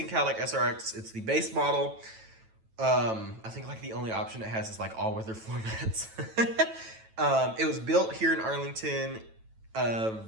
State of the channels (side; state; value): left; late; 9.1 ms